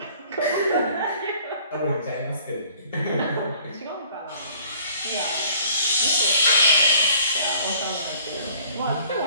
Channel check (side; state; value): both; inverted; correlation -0.55